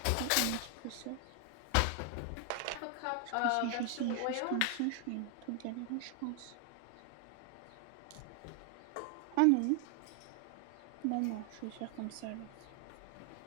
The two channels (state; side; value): different; both; correlation 0.00